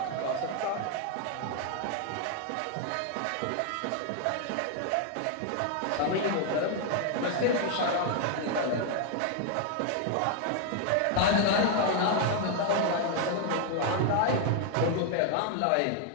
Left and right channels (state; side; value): different; both; correlation 0.00